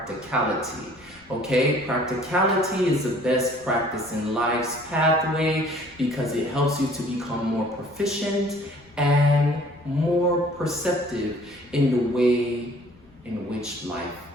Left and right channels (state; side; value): noise; left; rumble, 29 dB below the sound